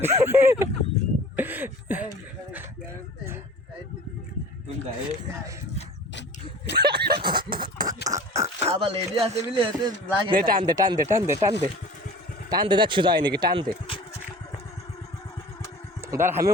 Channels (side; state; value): both; normal; correlation 0.42